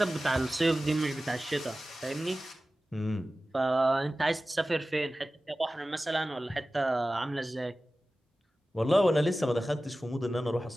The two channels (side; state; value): both; normal; correlation 0.96